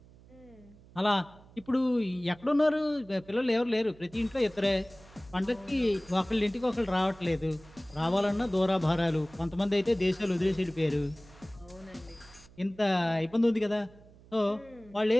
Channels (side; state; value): right; noise; hum, 24 dB below the sound